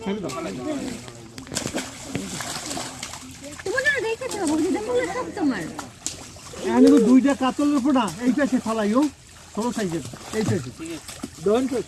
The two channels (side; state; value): both; identical; correlation 1.00